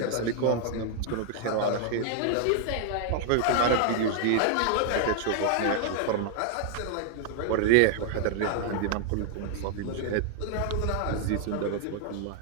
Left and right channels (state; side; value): different; both; correlation 0.00